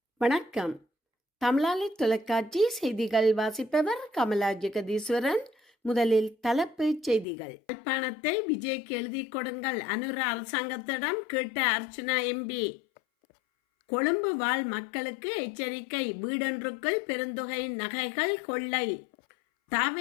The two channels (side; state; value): right; drops out; at 7.2 s